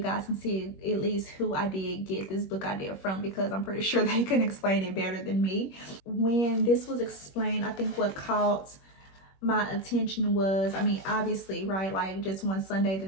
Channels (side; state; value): right; late; 21 ms